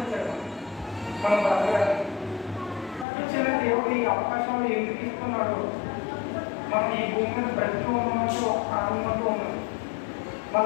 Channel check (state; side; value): drops out; right; at 3.1 s